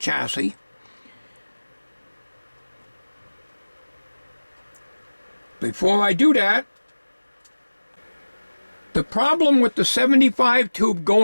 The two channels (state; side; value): inverted; both; correlation -1.00